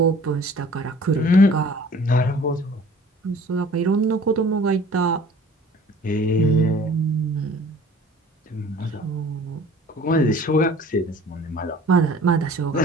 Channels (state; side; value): normal; both; correlation 0.49